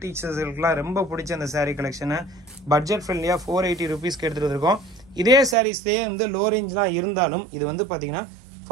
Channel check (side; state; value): left; drops out; at 5.6 s